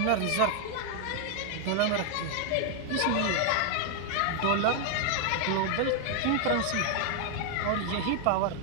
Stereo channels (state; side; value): different; both; correlation 0.00